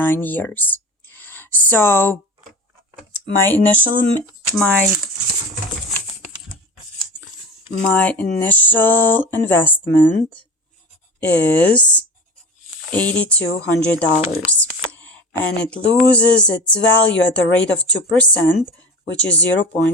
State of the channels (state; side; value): normal; both; correlation 0.32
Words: years. So my initial investment is $8,200, and it loses its value at the rate of 2%, which is